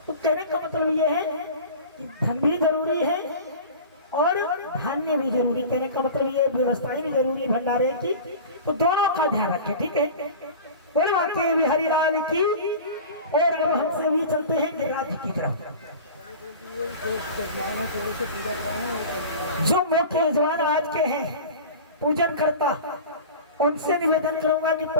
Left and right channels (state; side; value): inverted; both; correlation -0.36